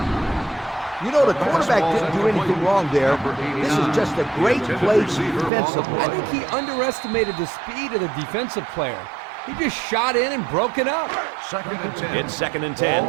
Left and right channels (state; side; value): drops out; left; at 5.5 s